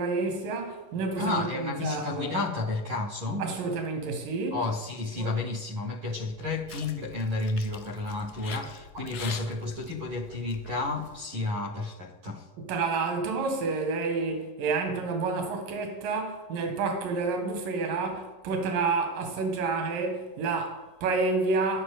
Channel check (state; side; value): late; left; 11 ms